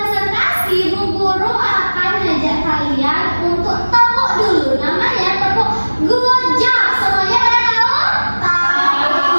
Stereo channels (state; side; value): inverted; both; correlation -1.00